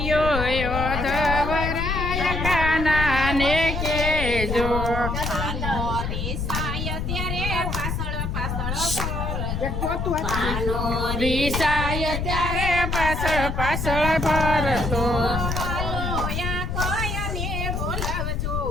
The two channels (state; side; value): noise; left; rumble, 2 dB below the sound